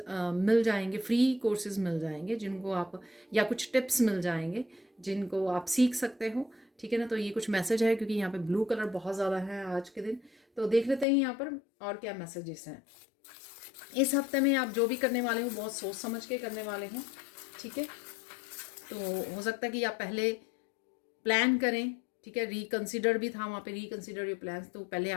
मिल जाएंगे, फ्री कोर्सेज मिल जाएंगे जिनको आप, या कुछ टिप्स मिल जाएंगे जिनको आप सीख सकते हो। ठीक है ना, तो ये कुछ मैसेज है क्योंकि यहाँ पे ब्लू कलर बहुत ज़्यादा है आज के दिन। तो देख लेते हैं यहाँ पर और क्या मैसेजेस हैं। इस हफ्ते में आप जो भी करने वाले हो बहुत सोच समझ के करने वाले हैं। ठीक है, तो हो सकता है कि आप पहले प्लान करें। ठीक है, रिकंसिडर भी था वहाँ पे, रिकंसिडर योर प्लान्स, तो पहले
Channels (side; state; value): right; drops out; at 11.1 s